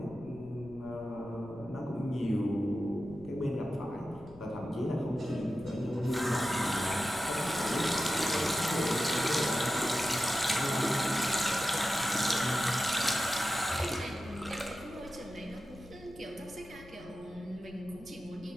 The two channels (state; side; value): noise; left; rumble, 20 dB below the sound